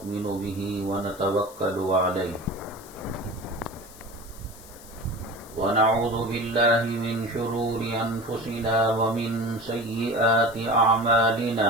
به ونتوکل علیہ ونعوذ باللہ من شرور انفسنا ومن سیئات اعمالنا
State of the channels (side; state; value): left; noise; hiss, 20 dB below the sound